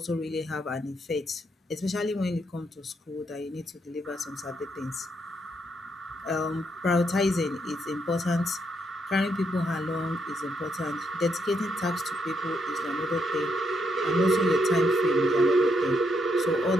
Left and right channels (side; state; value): both; normal; correlation 0.77